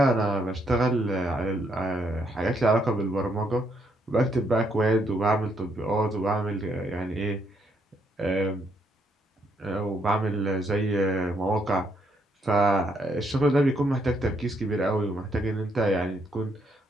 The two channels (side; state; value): both; normal; correlation 0.73